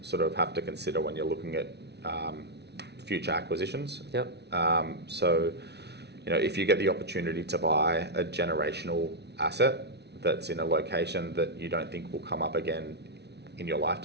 sort of have to consider when you're looking at future acquisitions. Yep. So, if you get the opportunity to buy a generational asset that's in a location that you don't think will come up again in your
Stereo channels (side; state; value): left; late; 0.49 ms